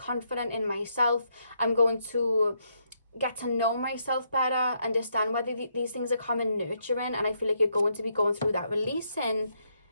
in myself. I'm going to get to know myself better, understand whether these things are common nurturing, and I feel like you're going to be going through that releasing,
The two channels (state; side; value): inverted; both; correlation -0.76